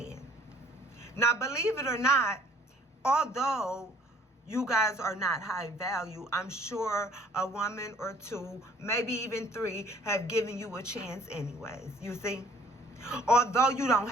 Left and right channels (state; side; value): normal; both; correlation 0.58